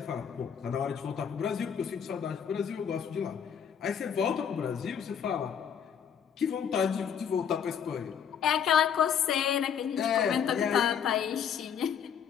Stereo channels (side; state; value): right; quieter; 7.9 dB